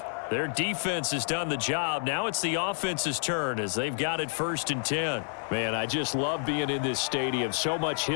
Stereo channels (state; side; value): silent; right; digital silence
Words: Their defense has done the job. Now it's the offense's turn as they've got it 1st and 10. Man, I just love being in this stadium. So much